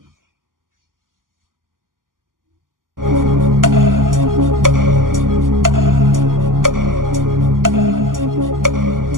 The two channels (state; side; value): late; left; 0.90 ms